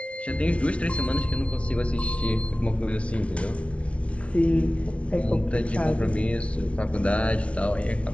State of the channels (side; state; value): right; late; 0.062 ms